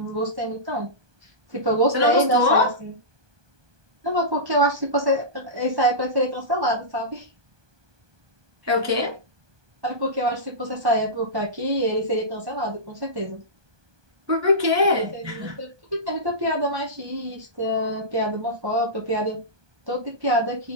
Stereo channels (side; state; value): left; late; 1.2 ms